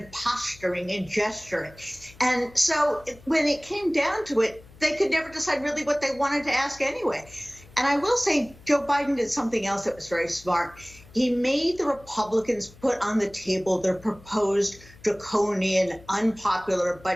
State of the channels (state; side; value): noise; left; hum, 23 dB below the sound